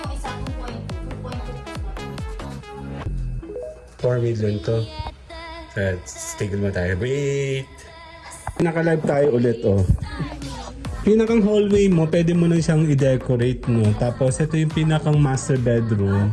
isa 2.2 4 million to. Tigil mo tayo. Wait. Naka-live tayo ulit, oh. Pinakang hallway mo, pwede mo na siyang i-decorate, no? Tapos, ito yung pinakang master bedroom.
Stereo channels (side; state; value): both; identical; correlation 1.00